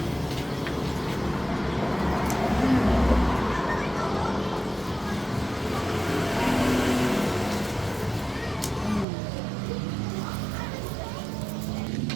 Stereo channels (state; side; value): drops out; left; at 9.1 s